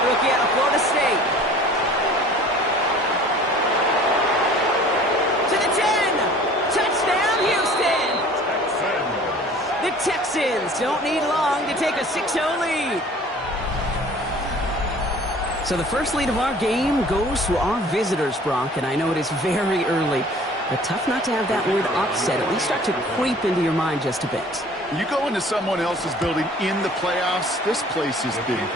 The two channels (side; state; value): both; normal; correlation 0.49